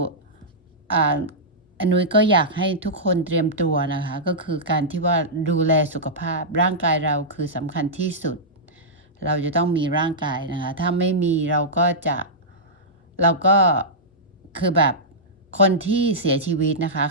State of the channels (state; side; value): normal; both; correlation -0.13